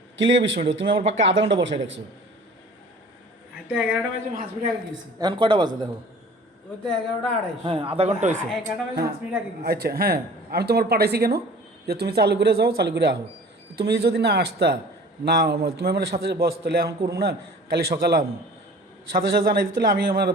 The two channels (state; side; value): normal; both; correlation 0.46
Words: কি লিখে 20 মিনিট? তুমি আমার পাক্কা আধা ঘন্টা বসায় রাখছো। আমি তো 11টা বাজে 5 মিনিট আগে গেছি। এখন কটা বাজে দেখো? ওই তো 11:28। হ্যাঁ আধা ঘন্টা হয়েছে। 11টা বাজে 5 মিনিট আগে গেছি। আচ্ছা হ্যাঁ আমি তোমার পাঠাইছি কেন যে তুমি চালু করে যাও, চালু করে আহো। তুমি যদি না আসতা না তুমি আমার সাথে বস, তাহলে এখন করুন না, কালি সকালে আমি সাথে সাথে জানাই দিতে, আমি আমার